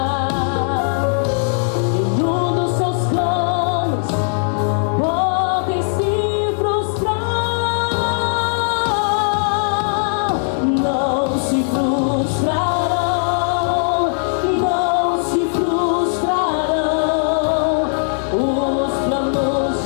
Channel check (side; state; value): right; silent; digital silence